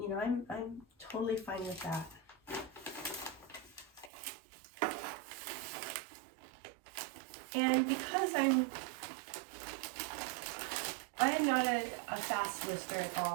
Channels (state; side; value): drops out; left; at 4.1 s